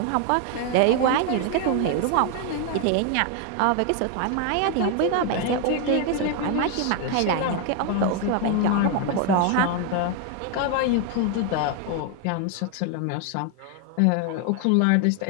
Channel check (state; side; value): different; both; correlation 0.01